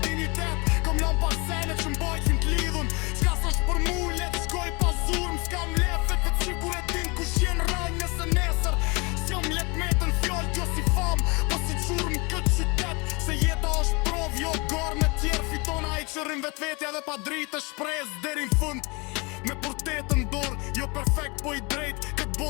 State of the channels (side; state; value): right; quieter; 28.4 dB